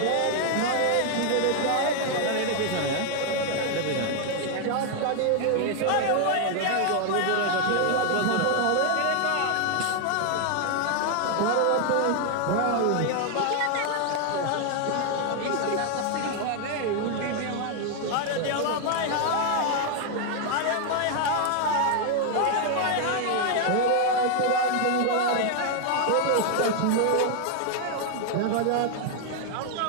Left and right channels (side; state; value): both; different; correlation 0.00